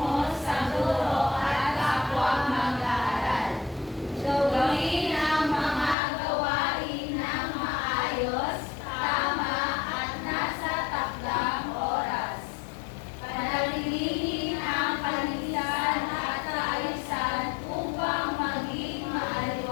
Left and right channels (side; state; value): right; drops out; at 6.0 s